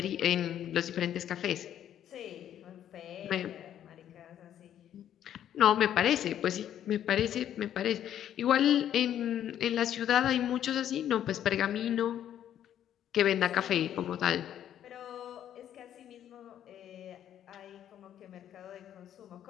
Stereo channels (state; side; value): quieter; right; 10.6 dB